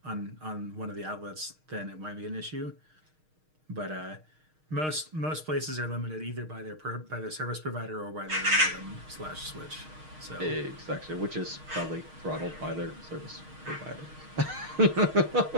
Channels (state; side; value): late; left; 6.5 ms